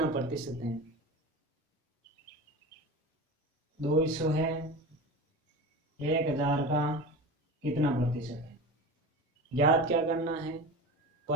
प्रतिशत है। 200 है 1000 का कितना प्रतिशत है, ज्ञात क्या करना है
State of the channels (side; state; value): both; normal; correlation 0.30